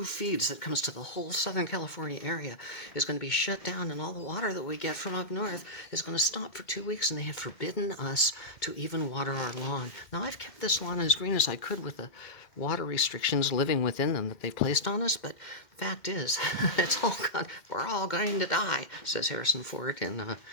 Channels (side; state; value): right; late; 2.1 ms